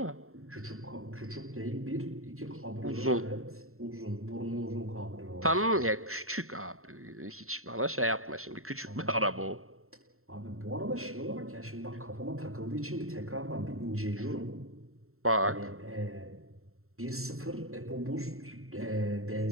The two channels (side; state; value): left; late; 0.62 ms